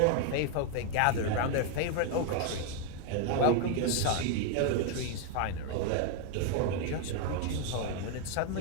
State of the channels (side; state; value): both; different; correlation 0.01